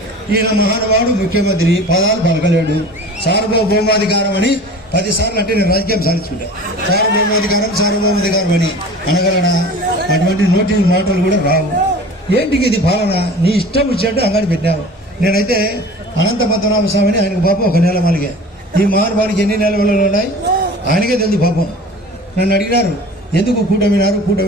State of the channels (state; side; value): normal; both; correlation 0.40